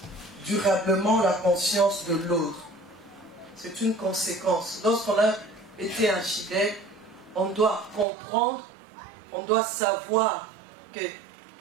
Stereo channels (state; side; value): drops out; left; at 8.1 s